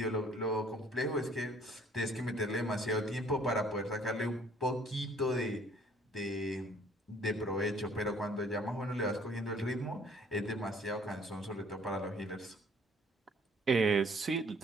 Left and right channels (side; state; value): both; normal; correlation 0.58